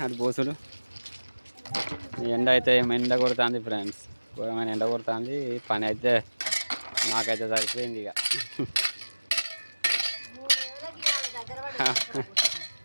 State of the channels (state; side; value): inverted; both; correlation -1.00